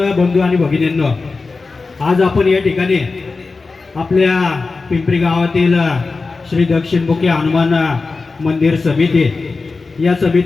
बंधू आणि भगिनींनो, आज आपण या ठिकाणी आपल्या पिंपरी गावातील श्री दक्षिणमुखी हनुमान मंदिर समिती या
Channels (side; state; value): right; quieter; 4.0 dB